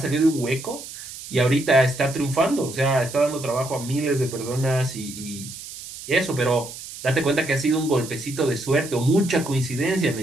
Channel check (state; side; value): noise; right; hiss, 13 dB below the sound